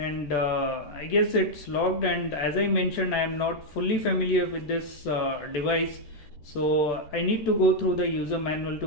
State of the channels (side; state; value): right; late; 14 ms